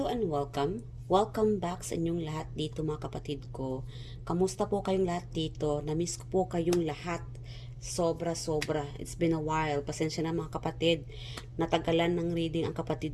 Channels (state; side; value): identical; both; correlation 1.00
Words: and welcome. Welcome back sa inyong lahat dito mga kapatid ko. Kamusta po kayong lahat dito? Namiss ko po kayong lahat. Sobra-sobra. It's been a while. Pasensya na mga kapatid. Natagalan ng reading ang